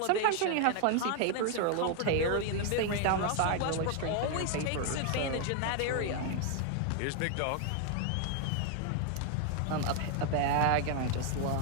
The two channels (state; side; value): different; both; correlation 0.00